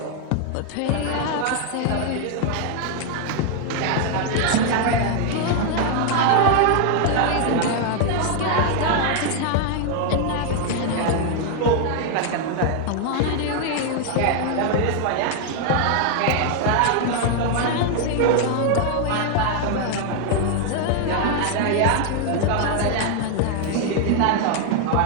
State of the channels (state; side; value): different; both; correlation 0.00